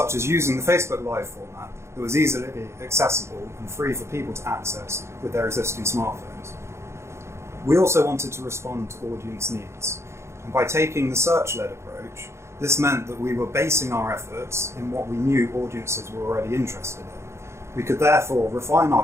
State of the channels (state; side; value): late; left; 0.13 ms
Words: as using the Facebook Live format that was easily accessible and free for people to access with their existing smartphones. We also wanted to respond to audience needs, and by taking the search-led approach, this meant that we were basing our efforts in what we knew audiences were already interested in. We could therefore refine